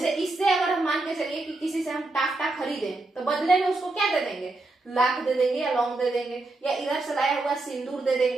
इससे अगर हम मान के चलिए कि किसी से हम टाफ्टा खरीदें तो बदले में उसको क्या दे देंगे, लाख दे देंगे या लौंग दे देंगे, या इधर से लाया हुआ सिंदूर दे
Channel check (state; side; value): quieter; left; 3.1 dB